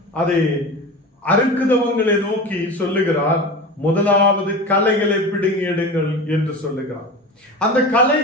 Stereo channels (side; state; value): both; normal; correlation 0.30